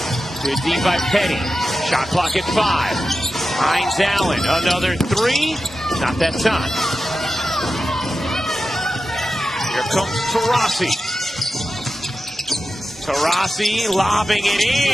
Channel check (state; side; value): normal; both; correlation 0.92